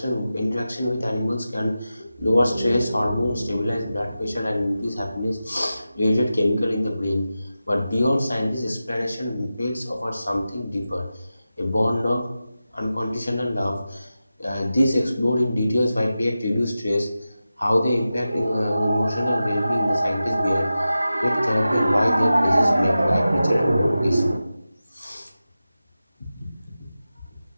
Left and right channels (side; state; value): both; inverted; correlation -0.93